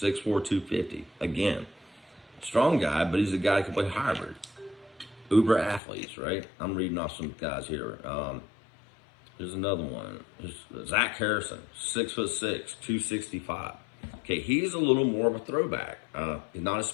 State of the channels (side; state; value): right; drops out; at 5.8 s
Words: 250. Again, strong guy, but he's a guy who can play hybrid. Uber athletes, right? I'm reading off some guys here. Here's another one. Here's Zach Harrison, 6'6", 265. Okay, he's a little more of a throwback. He's not a